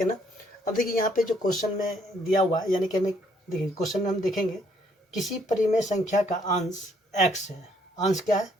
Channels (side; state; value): both; normal; correlation 0.68